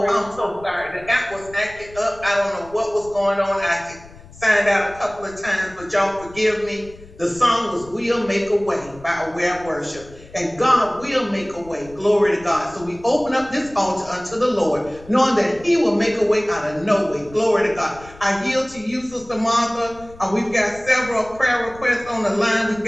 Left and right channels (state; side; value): noise; left; rumble, 21 dB below the sound